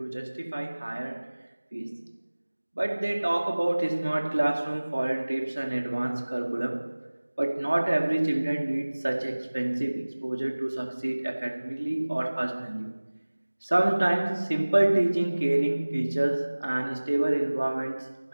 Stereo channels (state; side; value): inverted; both; correlation -1.00